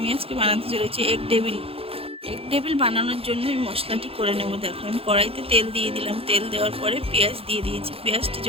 আজকে বানাতে চলেছি এগ ডেভিল বানানোর জন্য আমি মশলাটি করে নেব। দেখো, আমি কড়াইতে তেল দিয়ে দিলাম। তেল দেওয়ার পরে পেঁয়াজ দিয়ে দিয়েছি। পেঁয়াজটি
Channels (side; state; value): left; late; 0.27 ms